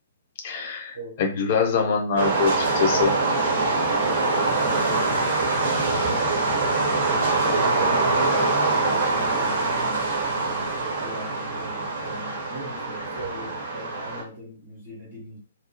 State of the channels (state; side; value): inverted; both; correlation -0.48